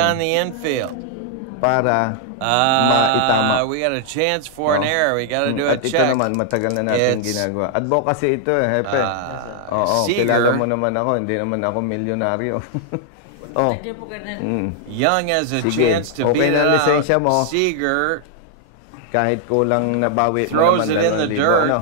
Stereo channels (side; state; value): both; different; correlation 0.00